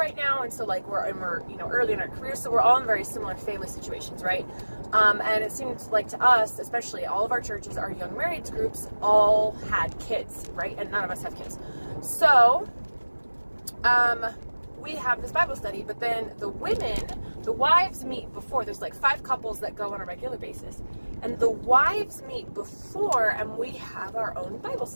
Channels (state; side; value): inverted; both; correlation -1.00